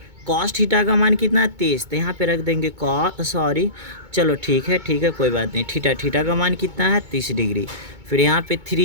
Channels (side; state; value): left; late; 2.2 ms